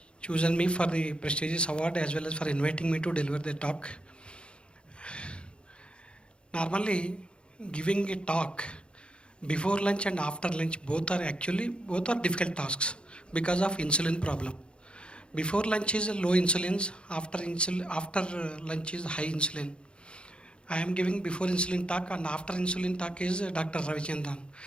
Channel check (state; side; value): late; right; 0.055 ms